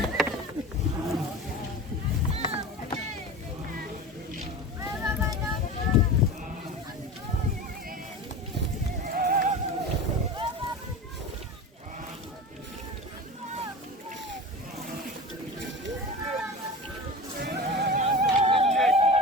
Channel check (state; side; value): normal; both; correlation 0.31